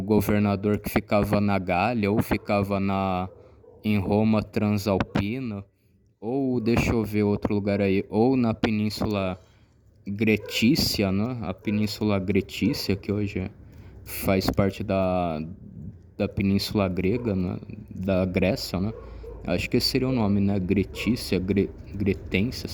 que ficava na Gália ou ficava em Roma Transalpina, ou deixa eu ver outro lugar aí, ou na Península Gretícia, né? A Península Gretícia, que hoje faz parte da Península Grega, né? Da Grécia, né? Acho que esse seria o nome, né? Gretícia, Gretência,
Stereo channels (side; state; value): both; identical; correlation 1.00